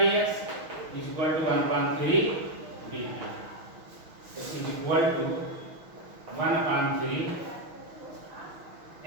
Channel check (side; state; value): left; late; 6.3 ms